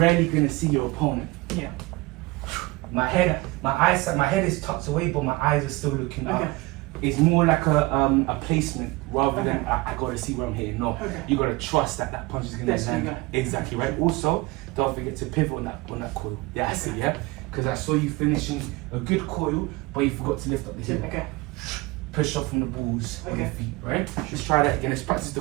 gonna see your opponent. My head is tucked away, but my eyes are still looking up. It's more like a placement rather than I gotta see where I'm hitting. No, you gotta trust that that punch is gonna land. Exactly, right? Also, don't forget to pivot on that coil. Yeah, I see, yeah? Because I saw you finishing a good coil, but you forgot to lift up the heel. Push off from the balls of your feet, right? Let's try that again. Let's practice the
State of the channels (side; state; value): left; quieter; 22.4 dB